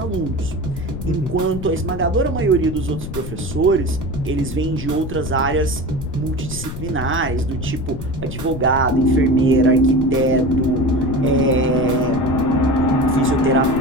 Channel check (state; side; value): noise; left; rumble, 8 dB below the sound